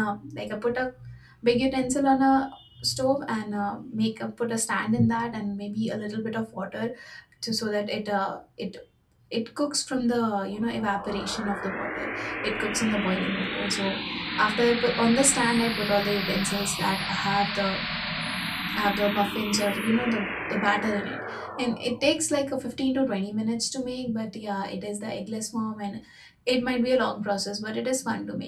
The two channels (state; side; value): identical; both; correlation 1.00